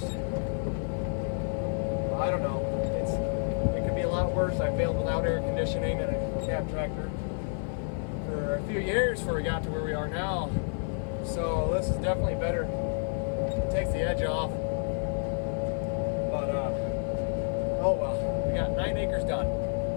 I don't know, it could be a lot worse. I failed without air conditioning and a cab tractor for a few years before we got to where we are now. So this is definitely better. It takes the edge off. But oh well, we got 9 acres done.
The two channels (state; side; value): silent; right; digital silence